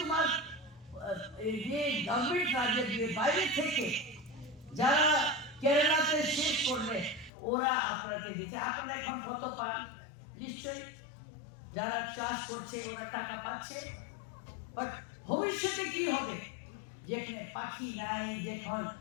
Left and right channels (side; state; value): right; drops out; at 7.3 s